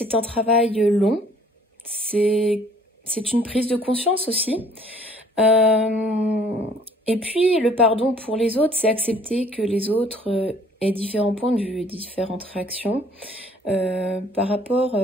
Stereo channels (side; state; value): both; normal; correlation 0.57